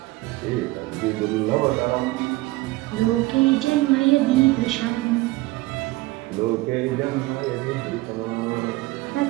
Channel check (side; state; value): left; quieter; 20.2 dB